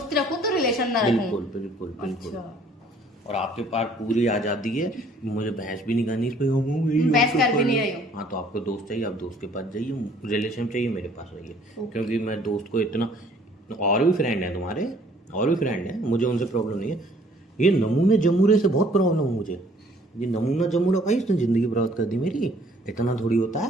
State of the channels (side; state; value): both; normal; correlation 0.59